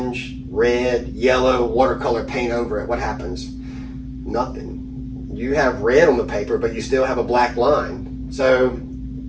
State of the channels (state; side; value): identical; both; correlation 1.00